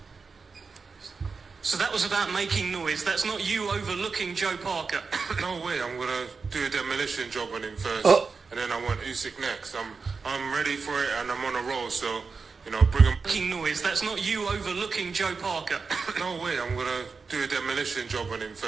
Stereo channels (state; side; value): quieter; left; 4.8 dB